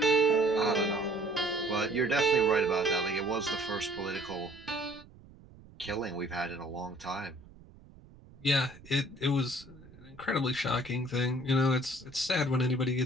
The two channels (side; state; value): right; noise; rumble, 22 dB below the sound